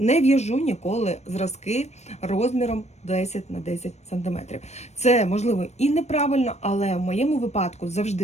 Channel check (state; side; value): late; right; 0.32 ms